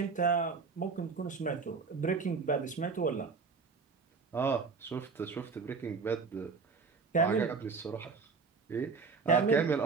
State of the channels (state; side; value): quieter; left; 4.8 dB